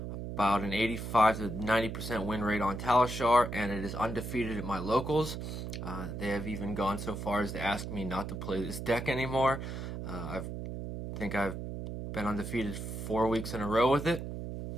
about an 85 to 90% win rate on Talishar, and it is undefeated at my locals. They have even gone so far as to ask me not to play this deck anymore. I think I've been undefeated 4 weeks in a row with it.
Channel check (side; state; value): right; noise; hum, 6 dB below the sound